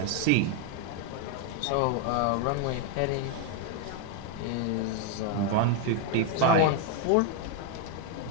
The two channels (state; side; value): different; both; correlation 0.01